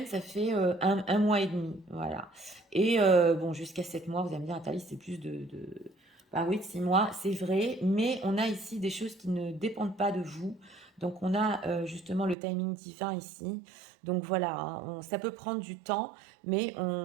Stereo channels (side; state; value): left; drops out; at 12.4 s